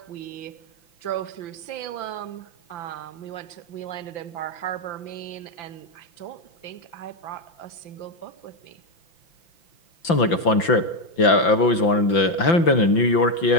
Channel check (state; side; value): late; right; 5.9 ms